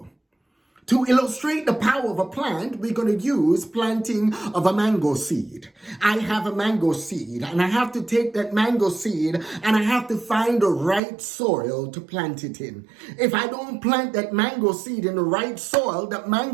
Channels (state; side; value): drops out; left; at 11.0 s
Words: To illustrate the power of a plant, we're going to use planting of a mango seed. I have a mango seed and I have to take that mango seed and I have to find the right soil to plant it in. If I don't plant that mango seed in the right soil, that